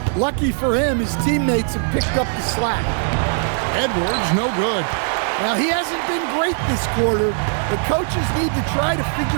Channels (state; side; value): silent; left; 66 dB below the other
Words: Lucky for him, his teammates have picked up the slack. Edwards, no good. Now, he hasn't been great this quarter. The coaches need to try to